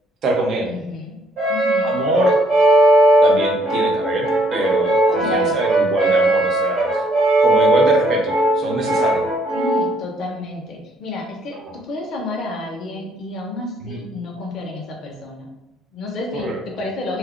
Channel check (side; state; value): both; normal; correlation 0.67